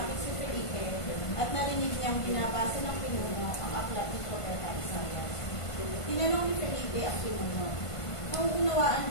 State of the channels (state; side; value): late; right; 1.5 ms